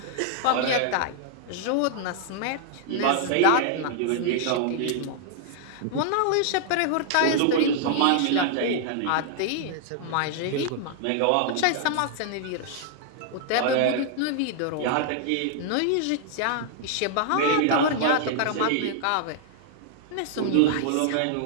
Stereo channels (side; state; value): both; different; correlation -0.01